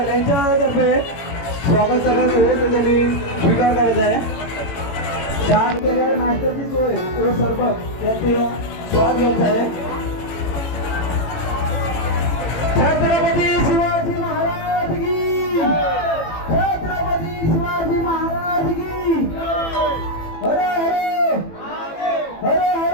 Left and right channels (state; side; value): late; right; 18 ms